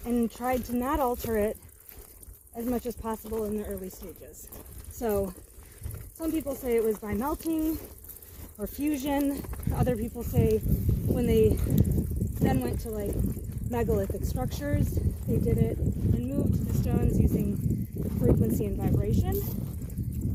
and tried to not alter it as much as possible in the early stages. So some people say it was by melting or fusion. Other people say when they then went to like megalithic structures, they did it and moved the stones using frequency and vibration.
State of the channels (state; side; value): identical; both; correlation 1.00